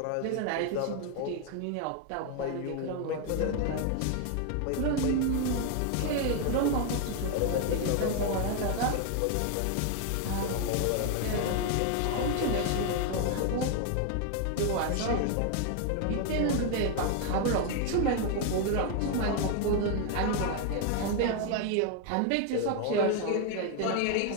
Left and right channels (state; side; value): different; both; correlation 0.00